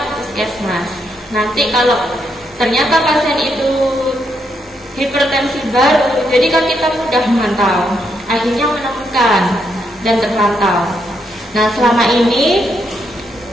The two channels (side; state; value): both; normal; correlation 0.78